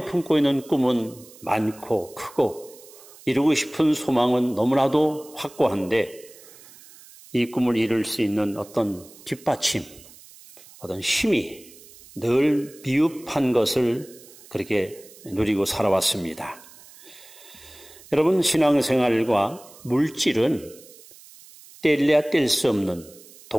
품고 있는 꿈은 많고 크고 이루고 싶은 소망은 너무나도 확고한데 이 꿈을 이룰 수 있는 어떤 뒷받침, 어떤 힘이 늘 미흡한 것을 그렇게 누리고 살아왔습니다. 여러분, 신앙생활과 물질은 뗄래야 뗄 수 없는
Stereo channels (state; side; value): noise; right; hiss, 22 dB below the sound